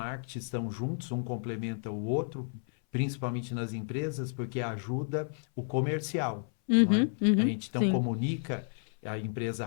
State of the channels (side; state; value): right; silent; 57 dB below the other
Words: estão juntos, um complementa o outro, principalmente nas empresas, porque ajuda o comercial, não é? uhum, A uhum, gente então sim, comunica, a empresa